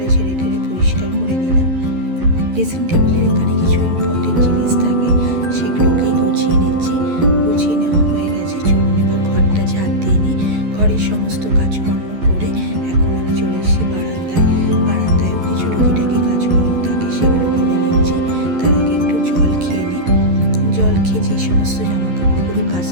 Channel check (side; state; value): left; late; 11 ms